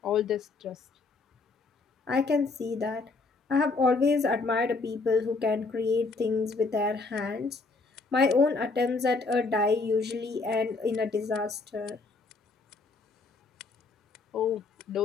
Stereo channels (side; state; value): right; quieter; 3.9 dB